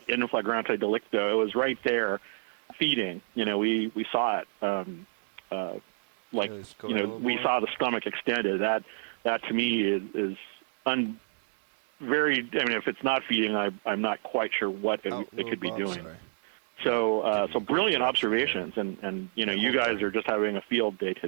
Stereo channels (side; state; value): left; silent; digital silence